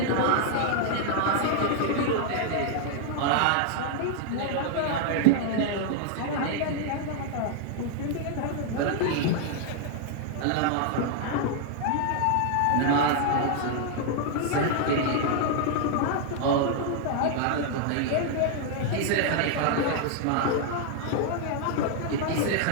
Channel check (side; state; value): both; different; correlation 0.00